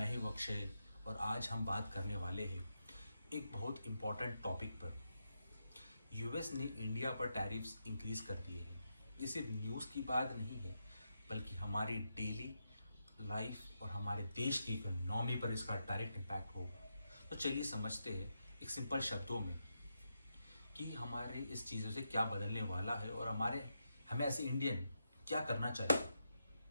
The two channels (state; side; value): inverted; both; correlation -0.85